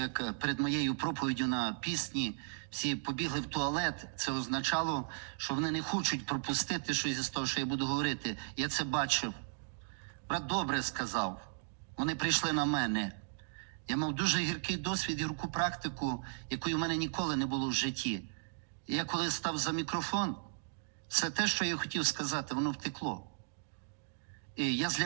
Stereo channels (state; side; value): silent; left; digital silence